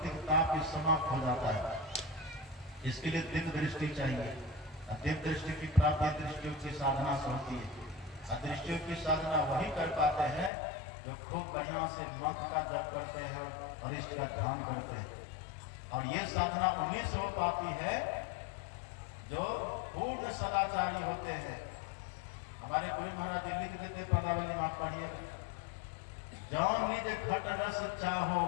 ताप भी समाप्त हो जाता है। इसके लिए दिव्य दृष्टि चाहिए। दिव्य दृष्टि की प्राप्ति दृष्टियों की साधना से होती है। दृष्टियों की साधना वही कर पाते हैं जो खूब बढ़िया से मंत्र का जप करते हैं और इष्ट का ध्यान करते हैं। और ये साधना उन्हीं से हो पाती है जो पूर्ण सदाचारी होते हैं। हमारे गुरु महाराज जी लिख देते पदावली में, पढ़िए, जौन निज घट रस चाहो,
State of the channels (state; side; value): drops out; right; at 10.5 s